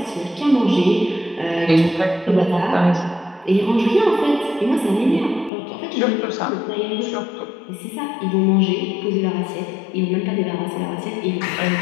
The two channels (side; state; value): right; drops out; at 5.5 s